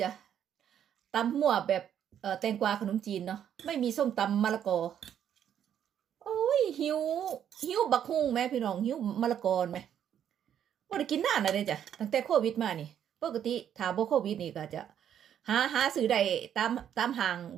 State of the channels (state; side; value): quieter; left; 9.5 dB